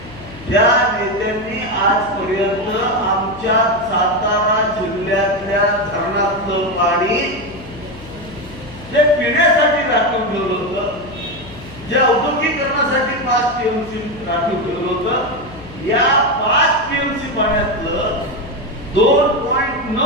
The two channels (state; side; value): noise; left; hum, 17 dB below the sound